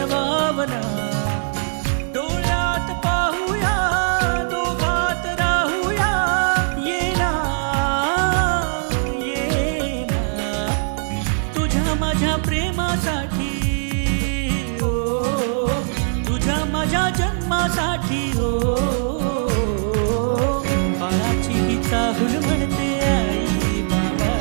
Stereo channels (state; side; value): silent; left; digital silence